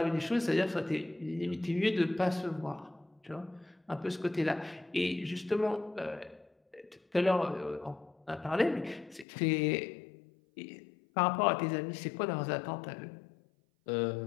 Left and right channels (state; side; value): drops out; right; at 9.2 s